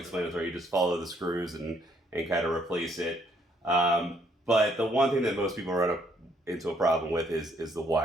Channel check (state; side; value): normal; both; correlation 0.68